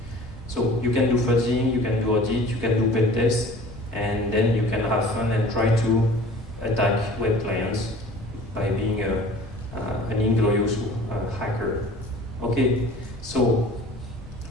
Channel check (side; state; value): both; normal; correlation 0.45